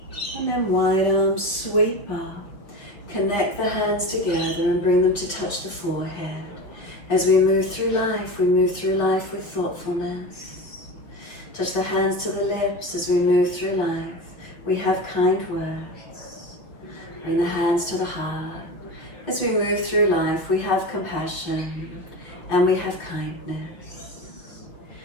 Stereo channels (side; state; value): right; late; 5.6 ms